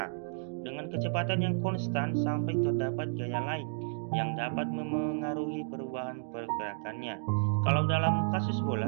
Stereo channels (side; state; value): left; silent; digital silence